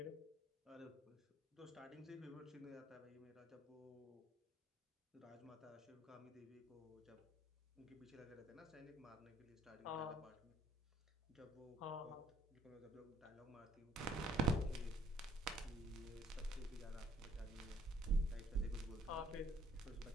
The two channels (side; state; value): both; normal; correlation 0.64